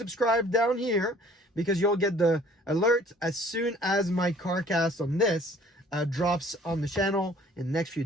down here because you'll get the alert as soon as my CarCast on this drops on the channel in the next few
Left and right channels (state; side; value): normal; both; correlation 0.54